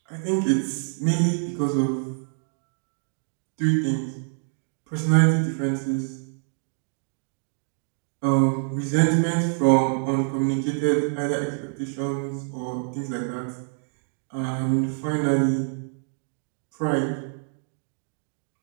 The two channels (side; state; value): left; silent; digital silence